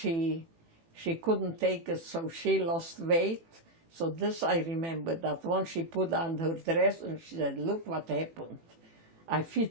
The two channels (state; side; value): late; left; 18 ms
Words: couldn't take it, so she lost weight. So this I remember, that once she put on her dress and she said, look what happened. I